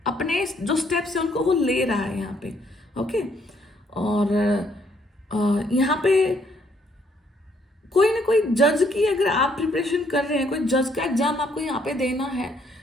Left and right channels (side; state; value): both; normal; correlation 0.69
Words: अपने जो स्टेप्स है उनको वो ले रहा है यहाँ पे। ओके, और यहाँ पे कोई ना कोई जज की अगर आप प्रिपरेशन कर रहे हैं, कोई जज का एग्जाम आपको यहाँ पे देना है।